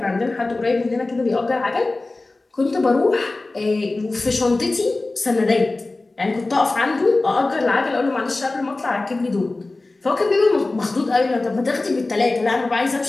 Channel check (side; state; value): right; quieter; 3.2 dB